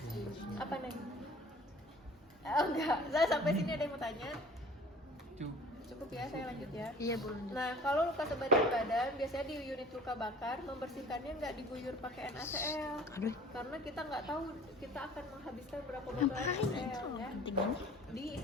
Apa nih? Oh enggak, saya sampai sini ada yang mau tanya? Cukup ya, saya lanjut ya. Iya, boleh. Nah, kalau luka sebagian badan, biasanya di unit luka bakar, membersihkannya nggak diguyur pakai NaCl. Karena kita nggak tahu kita akan menghabiskan berapa botol NaCl ya.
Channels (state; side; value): normal; both; correlation 0.47